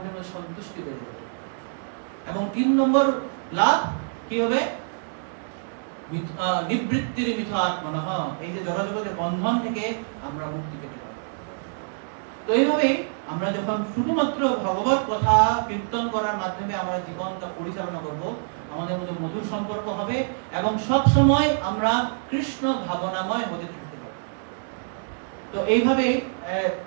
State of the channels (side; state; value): left; silent; digital silence